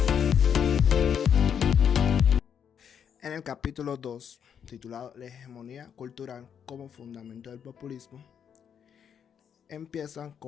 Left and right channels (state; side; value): quieter; right; 8.0 dB